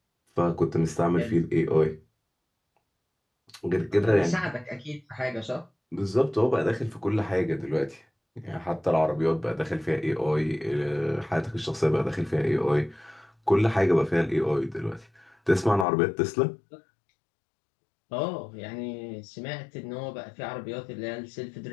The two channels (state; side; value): drops out; right; at 15.9 s